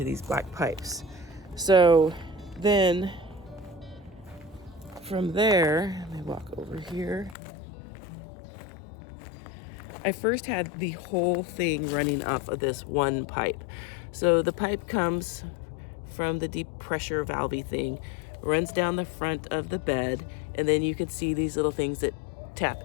these black pipes. So then from there, let me walk over here. I first had the whole thing running off of this one pipe. So the pipe comes from the deep pressure valvey thing, runs down the front of the bed, and then you can see these little things that tap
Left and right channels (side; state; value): right; drops out; at 7.4 s